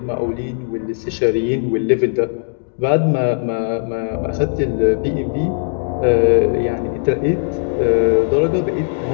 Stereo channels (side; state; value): right; silent; digital silence